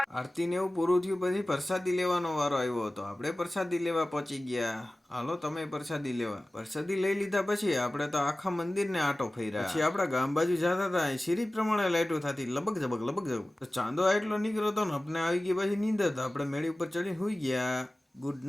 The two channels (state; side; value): normal; both; correlation 0.97